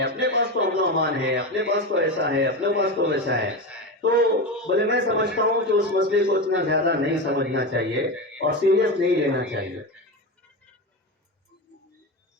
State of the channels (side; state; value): both; normal; correlation 0.19